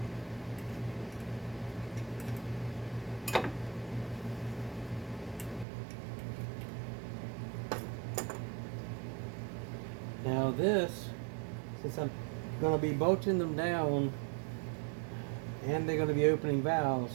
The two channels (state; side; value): drops out; left; at 5.7 s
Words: Now this, since I'm going to be bolting them down and they're going to be opening valves,